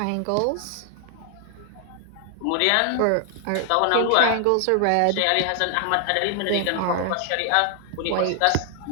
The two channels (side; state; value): both; different; correlation 0.00